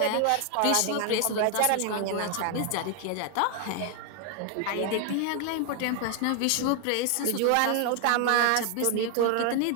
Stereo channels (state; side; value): different; both; correlation 0.00